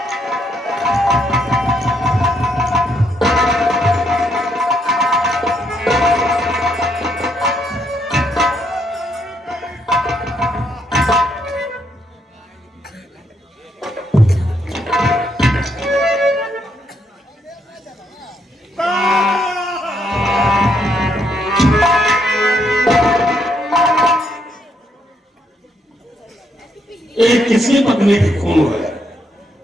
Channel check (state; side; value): normal; both; correlation 0.74